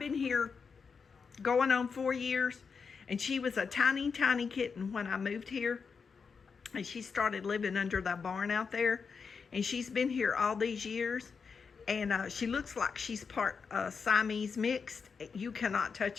here going on 4 years, and she was a tiny kitten when I moved here, and she started living under the barn out there, and she's been here all these years, and she looks like she's part Siamese mixed. You cannot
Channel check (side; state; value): right; quieter; 5.6 dB